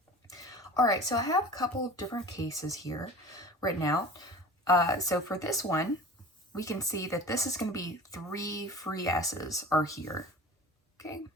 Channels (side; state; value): both; normal; correlation 0.39